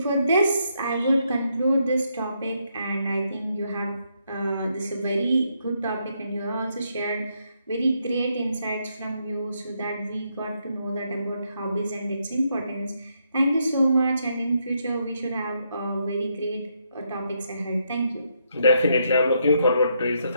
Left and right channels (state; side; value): inverted; both; correlation -0.77